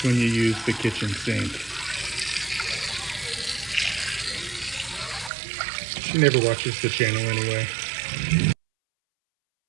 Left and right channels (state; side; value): drops out; left; at 5.3 s